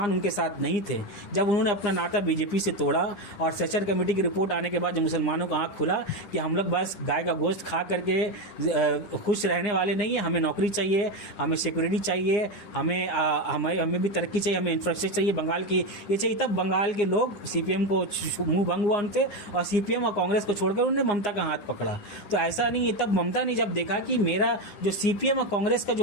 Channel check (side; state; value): right; late; 9.7 ms